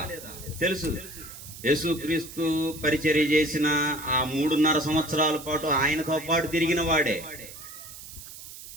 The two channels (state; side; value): noise; right; hiss, 14 dB below the sound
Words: తెలుసు. యేసుక్రీస్తు పరిచర్య చేసిన ఆ 3.5 సంవత్సరాల పాటు ఆయనతో పాటు తిరిగిన వాడే,